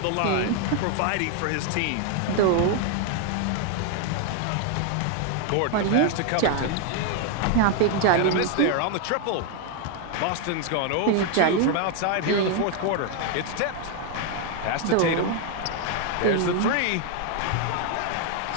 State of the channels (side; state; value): both; different; correlation 0.01